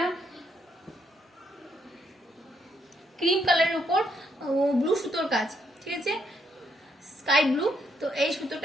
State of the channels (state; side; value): normal; both; correlation 0.75